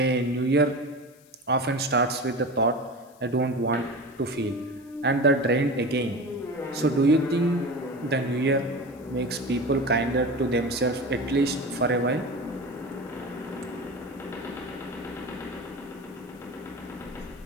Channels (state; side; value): noise; left; hiss, 28 dB below the sound